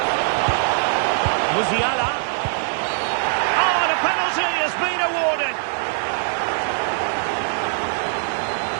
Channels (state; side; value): silent; left; digital silence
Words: Musiala. Oh, and a penalty has been awarded.